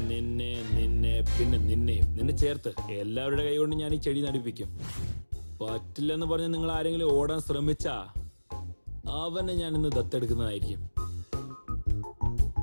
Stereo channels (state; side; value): inverted; both; correlation -1.00